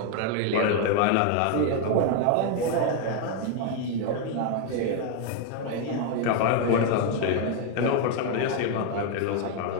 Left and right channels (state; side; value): different; both; correlation 0.01